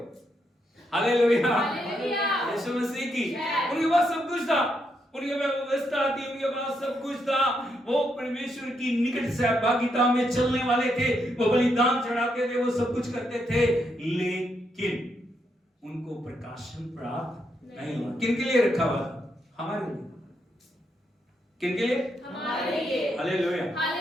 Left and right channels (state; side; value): normal; both; correlation 0.79